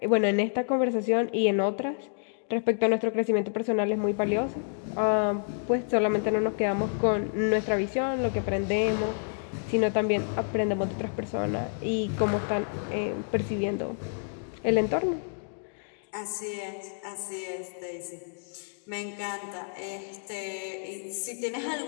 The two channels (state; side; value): silent; right; digital silence